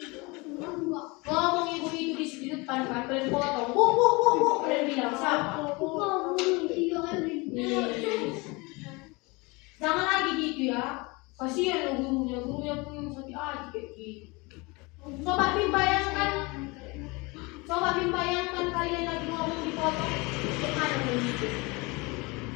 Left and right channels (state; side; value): quieter; right; 26.0 dB